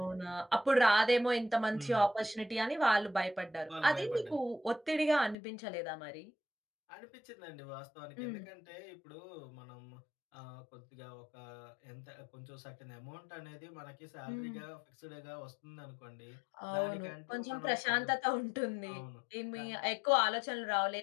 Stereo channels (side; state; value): right; drops out; at 5.4 s